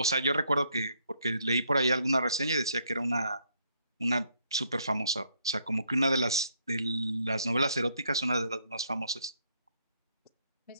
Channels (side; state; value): both; inverted; correlation -0.71